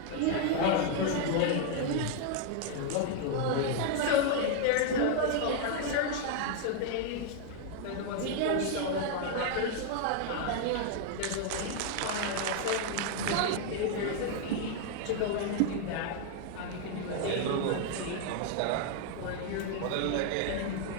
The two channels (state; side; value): different; both; correlation 0.00